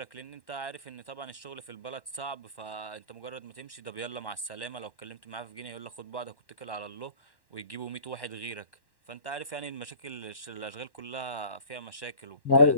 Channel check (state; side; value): late; right; 1.1 ms